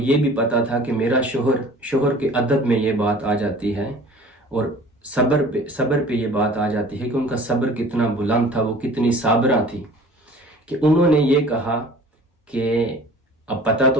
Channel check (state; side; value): normal; both; correlation 0.46